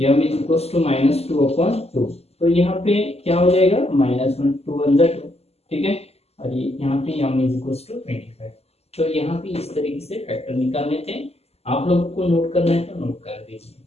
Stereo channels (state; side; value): late; right; 0.30 ms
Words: is equal to minus 2 upon 2। तो यहाँ पे क्या हो जाएगा, -1 2 अंदर 2। ठीक है, और ये यहाँ पे m इज इक्वल टू 25। तो यहाँ पे इस तरीके से फैक्टर निकालने थे। आप लोगों को नोट करना है तो नोट कर दीजिए।